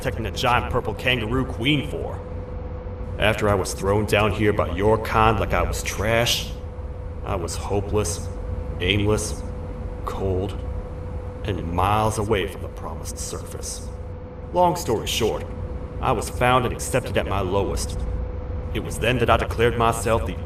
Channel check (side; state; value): both; identical; correlation 1.00